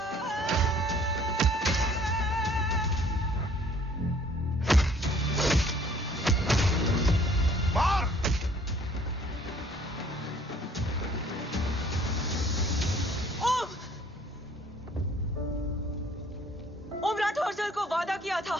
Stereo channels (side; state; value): both; normal; correlation 0.57